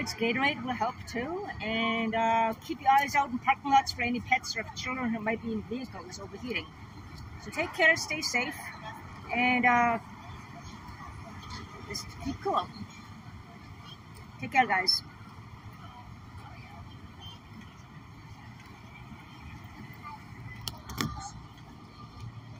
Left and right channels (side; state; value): both; identical; correlation 1.00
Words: Gatorade will help too. And keep your eyes out in parking lots for any pets or children who might be in vehicles overheating. So take care, stay safe, and just keep cool. Take care, guys.